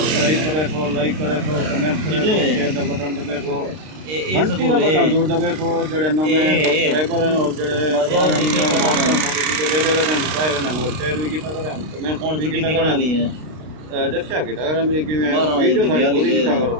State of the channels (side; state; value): left; late; 32 ms